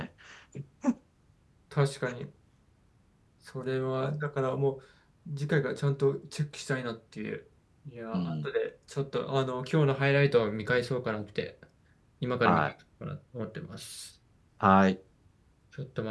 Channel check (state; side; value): identical; both; correlation 1.00